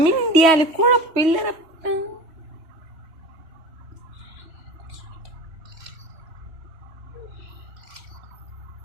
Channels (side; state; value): left; late; 3.1 ms